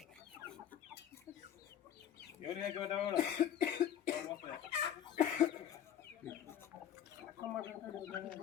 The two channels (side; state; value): right; quieter; 9.8 dB